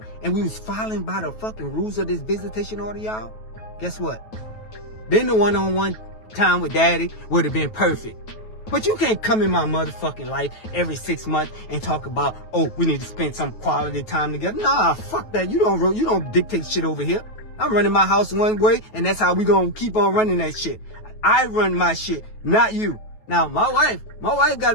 and we was following by the fucking rules of this visitation order, y'all, guess what? Then the one-on-one time with daddy would have been perfect. But you can't come in my motherfucking life every 6 months and talk about, oh, we need to spend some quality time together. Nah, fuck that. You don't dictate shit over here. I'm running my house one way, and that's how we gonna keep on running that shit. I run my shit, not you. Now, my wife got a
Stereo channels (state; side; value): late; right; 9.2 ms